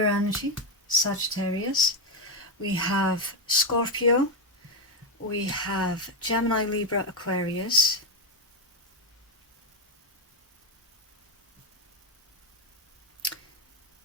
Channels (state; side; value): normal; both; correlation 0.05